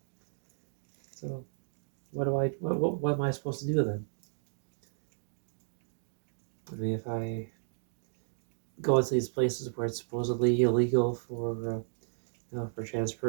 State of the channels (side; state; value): left; silent; digital silence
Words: So what am I supposed to do then? I mean, if I go into these places where it's supposedly illegal for for a trans